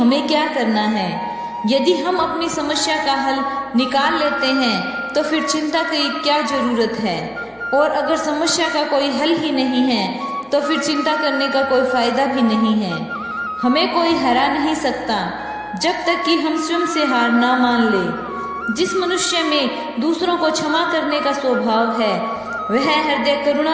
क्या करना है। यदि हम अपनी समस्या का हल निकाल लेते हैं तो फिर चिंता की क्या जरूरत है, और अगर समस्या का कोई हल ही नहीं है तो फिर चिंता करने का कोई फायदा भी नहीं है। हमें कोई हरा नहीं सकता जब तक कि हम स्वयं से हार ना मान ले। जिस मनुष्य में दूसरों को क्षमा करने का स्वभाव है वह हृदय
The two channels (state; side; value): identical; both; correlation 1.00